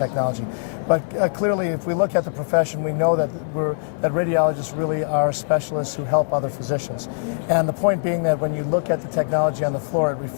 But clearly, if we look at the profession, we know that radiologists really are specialists who help other physicians. And the point being that when you look at the technology on the floor, it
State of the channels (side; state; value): right; silent; digital silence